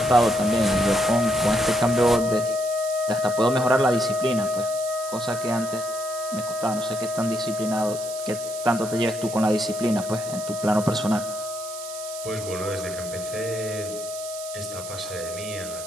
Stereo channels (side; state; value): right; noise; hiss, 11 dB below the sound